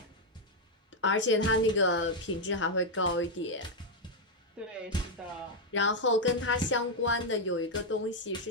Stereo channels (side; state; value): both; normal; correlation 0.01